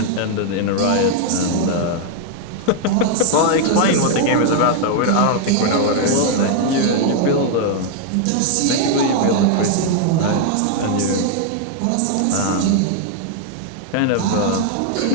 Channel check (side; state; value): both; different; correlation 0.00